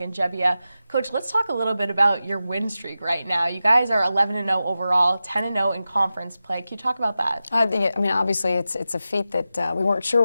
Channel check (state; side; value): inverted; both; correlation -0.93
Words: Gebbia. Coach, let's talk a little bit about your win streak right now. You guys are 11-0 overall, 10-0 in conference play. Can you talk about that? Obviously it's a feat that we weren't